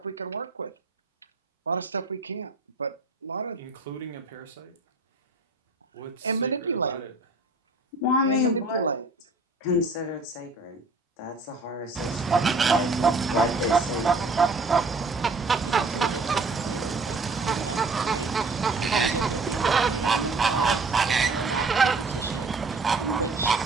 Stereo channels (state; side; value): quieter; left; 3.4 dB